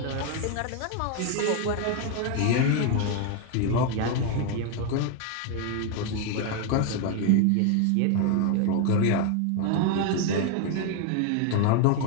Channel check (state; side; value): different; both; correlation 0.01